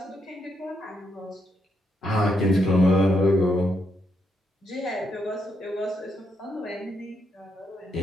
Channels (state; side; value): normal; both; correlation 0.78